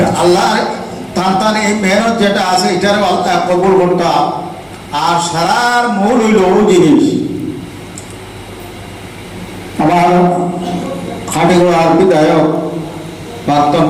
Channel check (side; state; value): both; identical; correlation 1.00